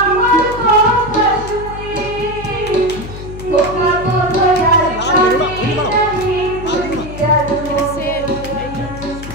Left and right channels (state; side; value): noise; left; hum, 11 dB below the sound